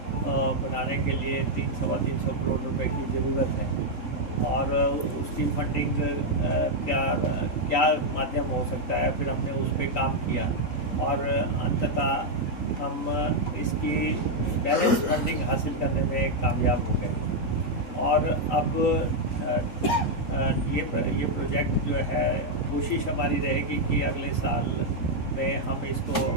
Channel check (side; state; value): right; late; 3.9 ms